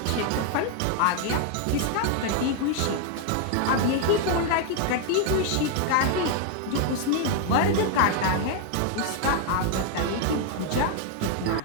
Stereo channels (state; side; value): different; both; correlation 0.00